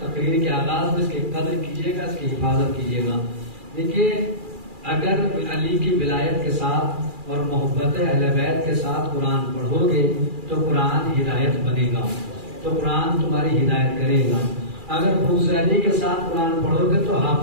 کے آغاز میں، اس کی قدر کیجیے گا، اس کی حفاظت کیجیے گا. دیکھیے، اگر علی کی ولایت کے ساتھ اور محبت اہل بیت کے ساتھ قرآن پڑھو گے تو قرآن ہدایت بنے گا، تو قرآن تمہاری ہدایت کرے گا. اگر بغض علی کے ساتھ قرآن پڑھو گے تو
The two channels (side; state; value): left; late; 2.4 ms